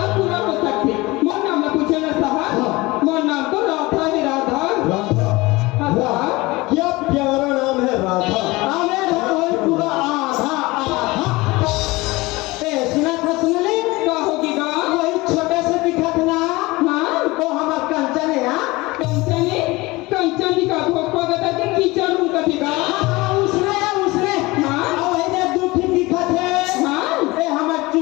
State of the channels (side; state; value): right; quieter; 21.8 dB